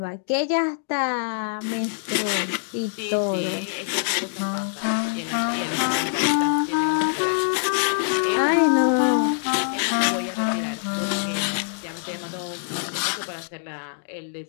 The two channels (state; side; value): silent; right; digital silence